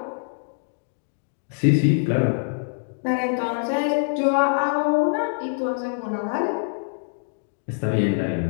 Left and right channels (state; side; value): silent; right; digital silence